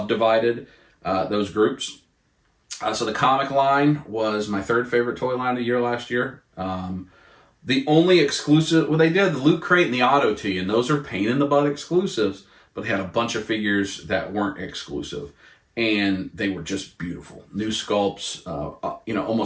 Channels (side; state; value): both; identical; correlation 1.00